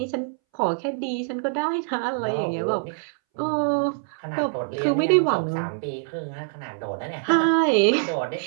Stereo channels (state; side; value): silent; left; 62 dB below the other